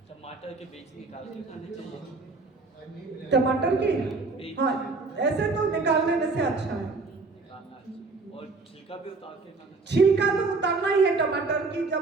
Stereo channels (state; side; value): quieter; left; 3.9 dB